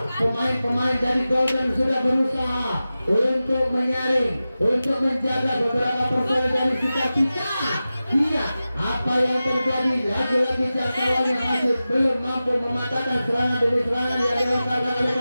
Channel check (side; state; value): both; inverted; correlation -0.95